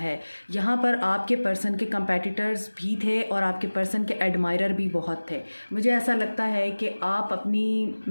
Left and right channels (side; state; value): both; inverted; correlation -1.00